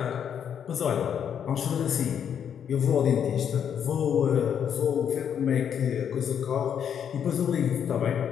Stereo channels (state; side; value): quieter; right; 8.4 dB